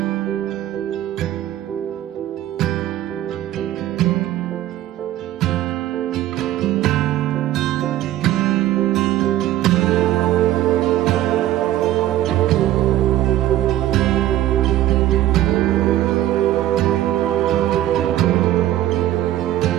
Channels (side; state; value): left; quieter; 13.7 dB